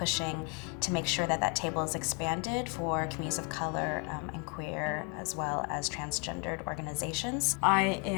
to make sure that that table is expanded for communities of color and queer as well as transgendered organizations. I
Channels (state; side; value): quieter; right; 32.8 dB